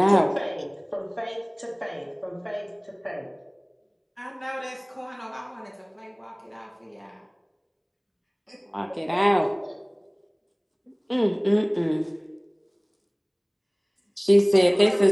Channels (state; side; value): identical; both; correlation 1.00